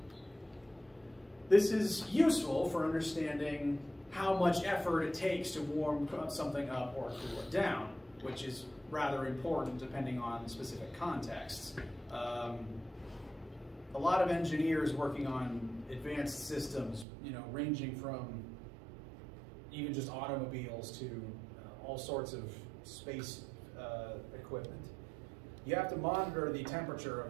This is useful for understanding how much effort it takes to warm something up or cool it down, which is rather important depending on specific contexts. A lot of engineers working on advanced systems, you know, ranging from even just automobiles to all sorts of space equipment. You have to monitor the temperature of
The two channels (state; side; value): drops out; left; at 17.1 s